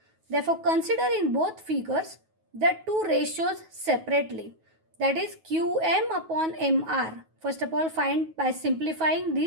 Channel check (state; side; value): late; left; 9.3 ms